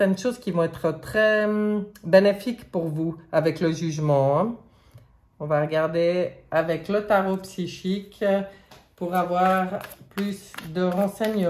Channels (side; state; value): both; identical; correlation 1.00